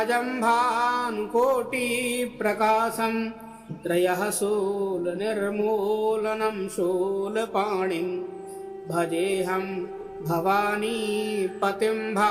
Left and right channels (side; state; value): both; identical; correlation 1.00